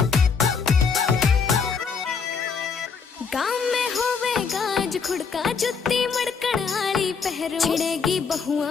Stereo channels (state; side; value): quieter; right; 5.6 dB